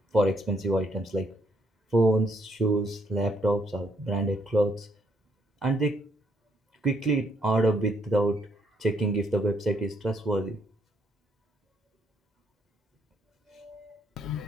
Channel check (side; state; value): both; normal; correlation 0.71